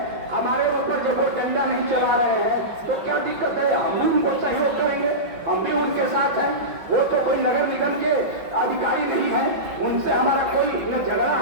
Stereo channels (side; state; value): left; late; 5.6 ms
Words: हमारे ऊपर जब वो डंडा नहीं चला रहे हैं, तो क्या दिक्कत है? हम भी उनको सहयोग करेंगे, हम भी उनके साथ हैं। वो तो कोई नगर निगम के अधिकारी नहीं है, उनसे हमारा कोई न झगड़ा